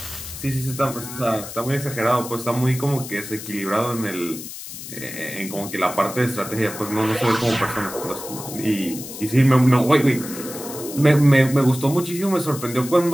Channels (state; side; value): noise; left; hiss, 11 dB below the sound